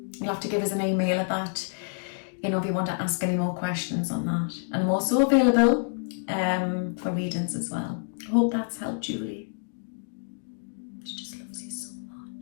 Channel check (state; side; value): silent; right; digital silence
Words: You'll have to give us an email at that, you know, if you want to ask any more questions on that. And I'm also available for readings as well. I hope that's helped, Julie. She just loves you so